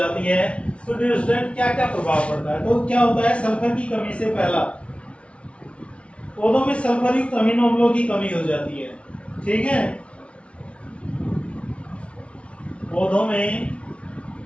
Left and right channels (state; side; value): late; right; 0.061 ms